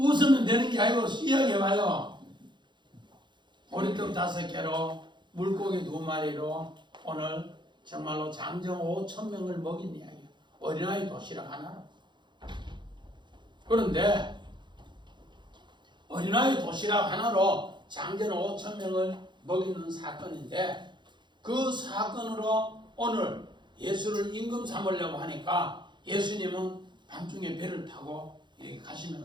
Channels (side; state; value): left; late; 0.22 ms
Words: 되는 게 아니고 이야기해봐요. 보리떡 5개로 물고기 2마리로 오늘 정말로 장정 5,000명을 먹인 이야기예요. 어린아이 도시락 하나로. 그런데 어린아이 도시락 하나로 장전 5,000명을 먹이는 사건인데 그 사건으로 오늘 예수를 임금 삼으려고 하니까 예수님은 밤중에 배를 타고 이렇게